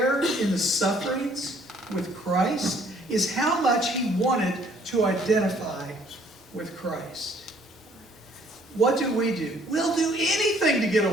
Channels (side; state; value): both; normal; correlation 0.61